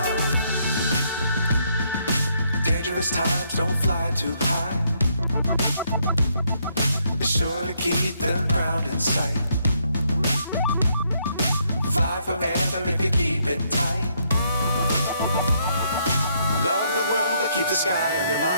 Times don't fly too high. Be sure to keep the ground in sight. Fly forever if you keep it tight. Love the world but keep the sky on your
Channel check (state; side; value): inverted; both; correlation -0.73